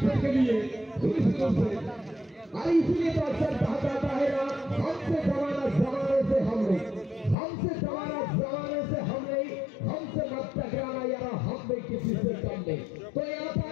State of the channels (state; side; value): drops out; right; at 7.4 s